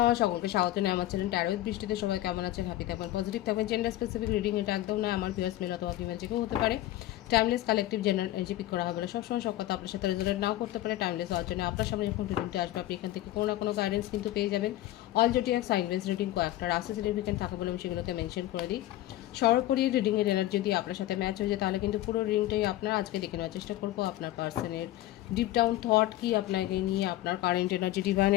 সকলকে স্বাগত জানাই আমার চ্যানেল ট্যারো উইথ বৃষ্টিতে। সবাই কেমন আছেন? হ্যাপি থাকবেন, পজিটিভ থাকবেন। জেন্ডার স্পেসিফিক রিডিং এটা একদম নয়, আমার ভিউয়ার্স মেল অথবা ফিমেল যে কেউ হতে পারে। Timeless collective general energy pick করা হবে না, সবসময় সব কথা আপনার সাথে রেজোনেট নাও করতে পারে। টাইমলেস হওয়ার জন্য আপনার সামনে যখন রিডিংটা আসবে আপনি এখান থেকে কোনো না কোনো গাইডেন্স কিন্তু পেয়ে যাবেন। All zodiac sign base reading কয়েকটা রাশি সিগনিফিকেন্ট থাকে বলে আমি সেগুলোকে মেনশন করে দিই। সর্বোপরি রিডিংয়ের এনার্জি যদি আপনার সাথে ম্যাচ হয়ে যায় তাহলে কিন্তু পুরো রিডিংটাই আপনার আজকে দেখে নেওয়ার চেষ্টা করবো। আপনার পার্সনের ডিপ ডাউন থট কি, আপনাকে নিয়ে আপনার কারেন্ট এনার্জি,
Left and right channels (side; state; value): right; quieter; 15.1 dB